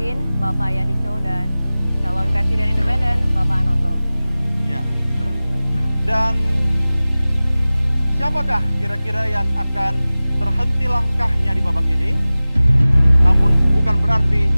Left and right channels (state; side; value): inverted; both; correlation -0.98